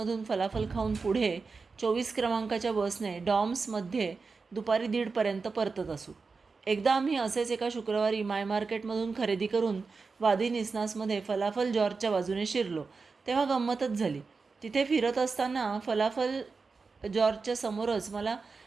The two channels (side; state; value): left; quieter; 4.5 dB